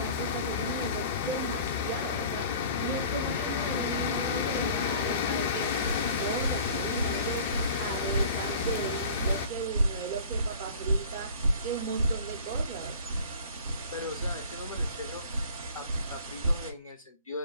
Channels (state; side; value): inverted; both; correlation -0.45